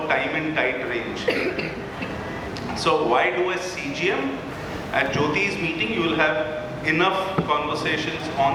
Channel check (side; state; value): both; identical; correlation 1.00